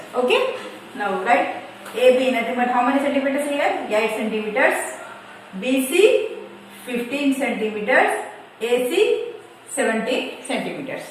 Okay. Now write AB nothing but how many centimeters here? 8 centimeters. BC 15 centimeters, AC 17 centimeters.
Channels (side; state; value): both; identical; correlation 1.00